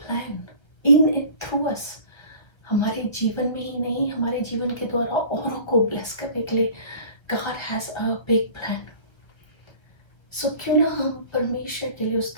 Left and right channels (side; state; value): right; late; 1.3 ms